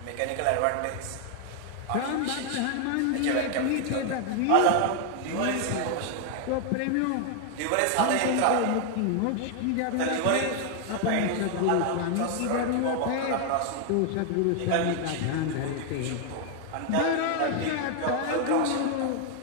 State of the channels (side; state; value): both; different; correlation 0.00